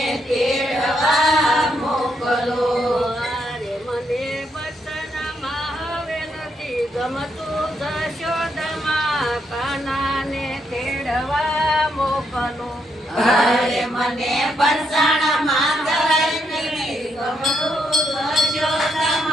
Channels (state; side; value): normal; both; correlation 0.77